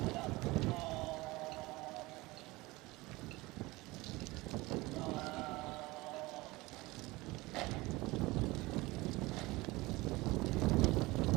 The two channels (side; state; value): left; quieter; 21.5 dB